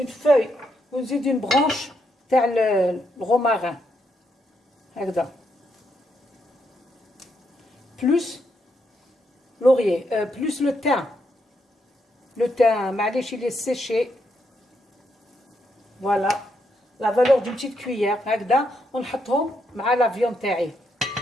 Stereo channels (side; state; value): both; normal; correlation 0.78